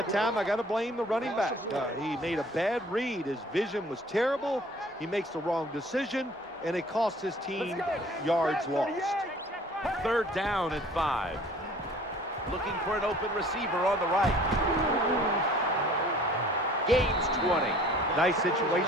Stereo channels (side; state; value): both; normal; correlation 0.51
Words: time I got to blame the running back. He made a bad read. His vision was terrible. He makes the wrong decision, and it cost his team yards lost. Third down and 5. Looking for an open receiver on the right. Gains 20. Nice